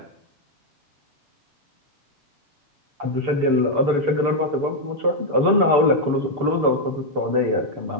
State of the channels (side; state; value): left; late; 6.9 ms